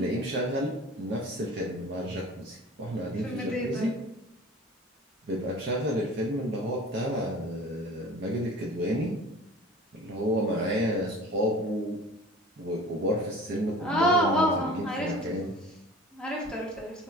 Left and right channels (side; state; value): both; normal; correlation 0.42